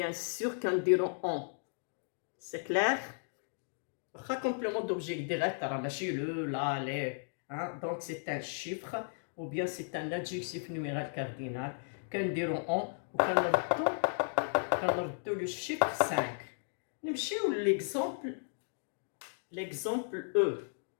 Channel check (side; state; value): right; silent; digital silence